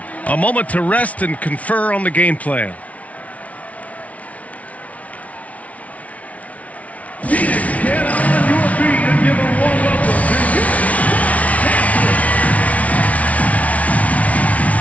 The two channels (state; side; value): late; right; 0.067 ms